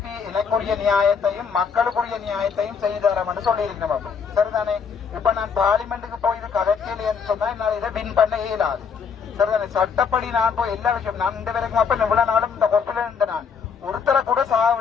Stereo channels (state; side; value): quieter; right; 6.2 dB